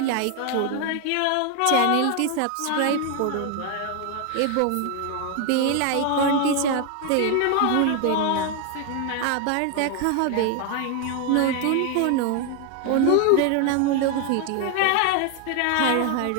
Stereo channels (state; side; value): different; both; correlation 0.01